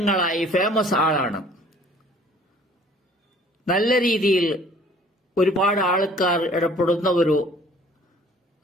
ഫേമസ് ആളാണ്. നല്ല രീതിയിൽ ഒരുപാട് ആൾക്കാർ ഇടപെടുന്ന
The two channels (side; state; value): both; normal; correlation 0.54